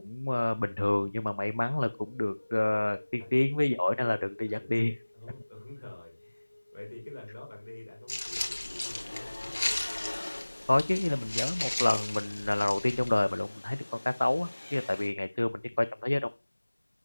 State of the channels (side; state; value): both; inverted; correlation -1.00